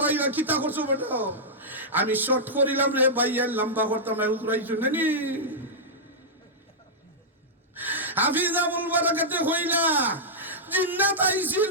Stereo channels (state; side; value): normal; both; correlation -0.09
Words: কিতা করছো বেটা আমি শর্ট করিলাম রে ভাইয়া লম্বা করতাম না উতরাইছো নানি হাফিজ আবুল বারাকাতে হইলা জিন্নাত আইছিল